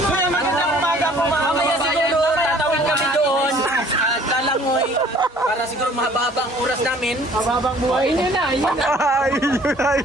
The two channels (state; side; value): normal; both; correlation 0.54